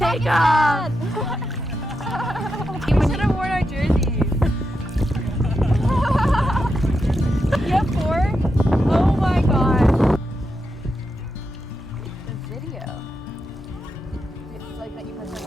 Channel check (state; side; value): normal; both; correlation 0.86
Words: take off. We should have worn our jerseys. You have 4? Oh my god. The video. It's like that you press on